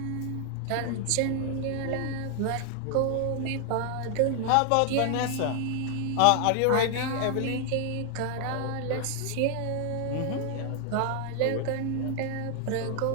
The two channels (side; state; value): both; different; correlation 0.00